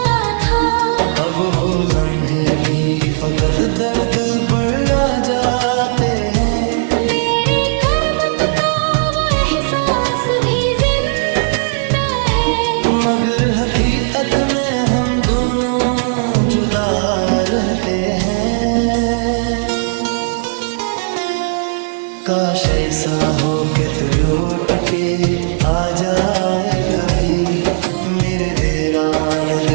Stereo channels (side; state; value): left; silent; digital silence